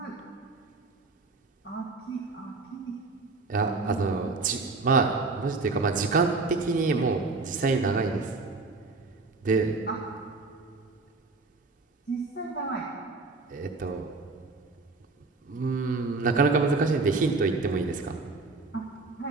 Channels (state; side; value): quieter; left; 3.7 dB